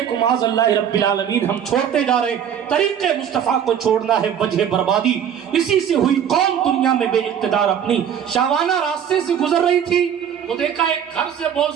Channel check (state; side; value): quieter; left; 8.8 dB